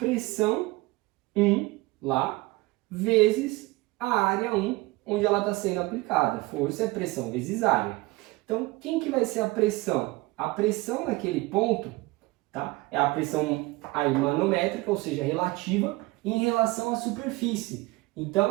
1 lá, vezes a área 1, onde ela está sendo aplicada. Força é pressão vezes área. Então, quem que vai ser a pressão? A pressão naquele ponto, tá? É a pressão aí manométrica, ou seja, relativa, em relação à superfície.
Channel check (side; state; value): left; quieter; 21.8 dB